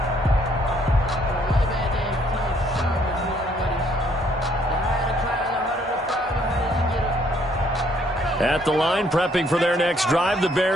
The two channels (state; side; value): normal; both; correlation 0.66